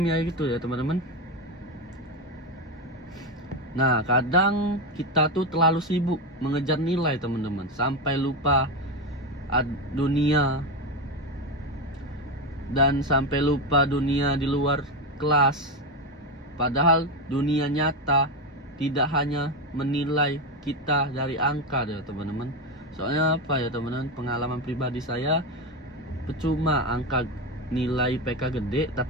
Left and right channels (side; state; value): both; normal; correlation 0.13